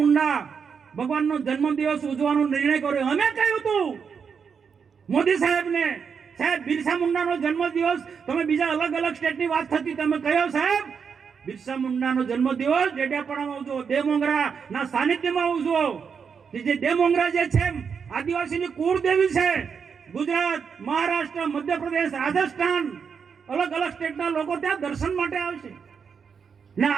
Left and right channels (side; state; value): left; quieter; 6.4 dB